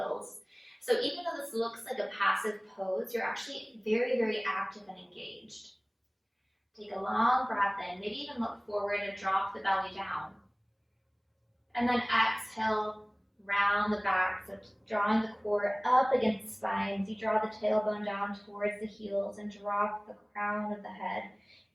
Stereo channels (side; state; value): both; identical; correlation 1.00